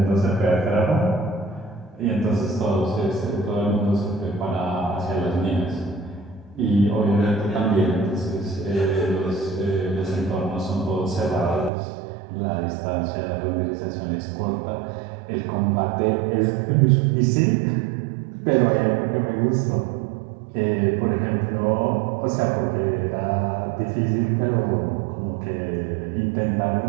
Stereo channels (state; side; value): drops out; left; at 11.7 s